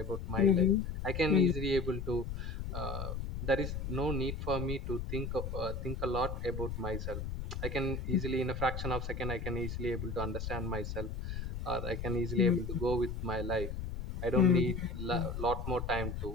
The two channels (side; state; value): left; noise; rumble, 5 dB below the sound